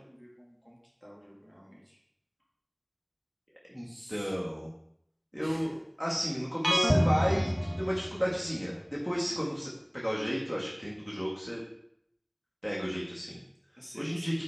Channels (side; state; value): both; identical; correlation 1.00